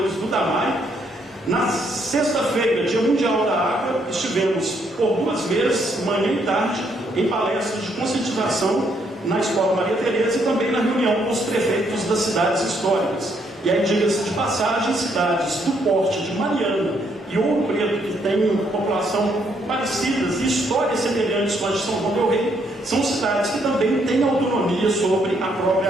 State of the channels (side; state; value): both; normal; correlation 0.72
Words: do Damai. Na sexta-feira, dia Mundial da Água, estivemos por 2 vezes, manhã e tarde, em palestras de conscientização na Escola Maria Tereza e também na reunião com os prefeitos das cidades históricas. E aí, diga-se de passagem, cidades do porte de Mariana e Ouro Preto, que têm população parecidas e histórias semelhantes com a de São João del Rei, são cidades que também têm autonomia sobre a